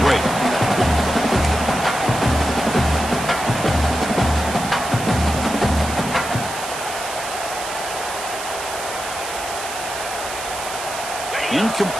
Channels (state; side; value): noise; right; hiss, 9 dB below the sound